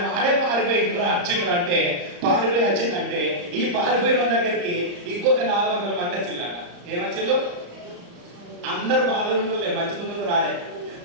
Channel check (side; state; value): left; late; 34 ms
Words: వాడే పారిపోయిండు వచ్చిండ్రు. పారిపోయి వచ్చిందంటే ఈ పారిపోయిన దగ్గరికి ఇంకొక 400 మంది వచ్చిందట. ఏమొచ్చిళ్ళు? అందరు బాధలు మంచిగా రాలే.